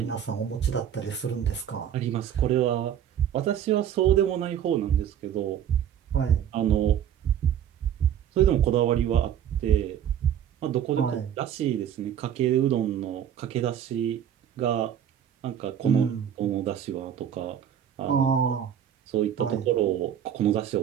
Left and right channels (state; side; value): quieter; left; 9.6 dB